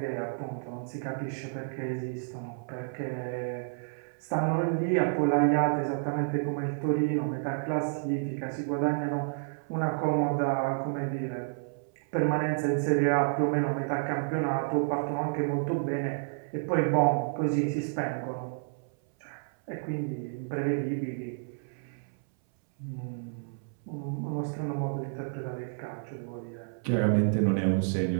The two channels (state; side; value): silent; left; 58 dB below the other